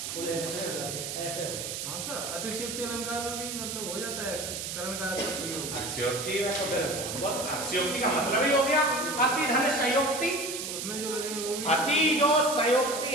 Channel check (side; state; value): right; noise; hiss, 5 dB below the sound